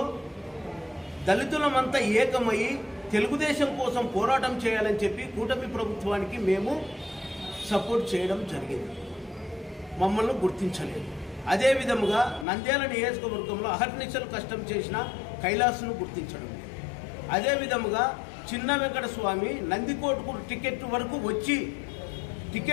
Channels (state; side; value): drops out; right; at 12.5 s